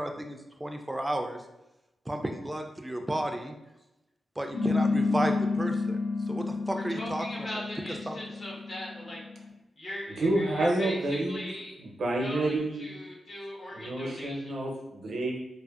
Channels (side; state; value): both; normal; correlation 0.89